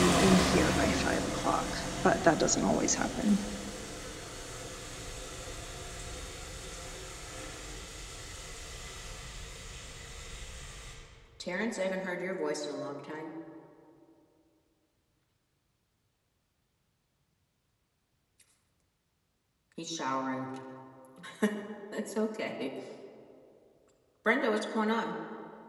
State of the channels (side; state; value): both; identical; correlation 1.00